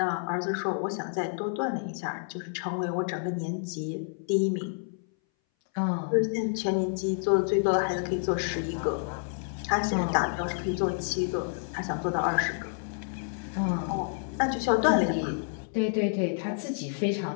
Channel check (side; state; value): right; silent; 58 dB below the other